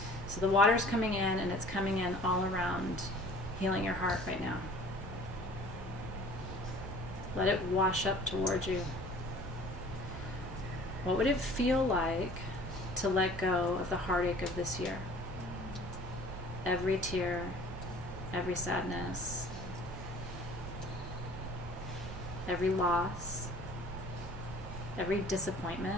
So the water's coming in, and it's coming in all around, healing your heart right now. Let it wash up towards you. What would it feel like to let go of the heartache of this year? Every tear, every sadness, every loss, every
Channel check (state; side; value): normal; both; correlation 0.48